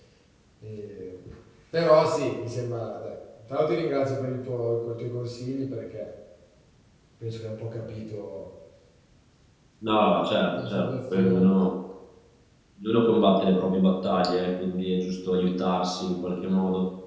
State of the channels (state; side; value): identical; both; correlation 1.00